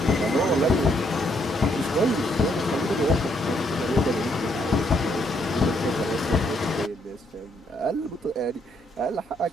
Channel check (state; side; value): normal; both; correlation 0.72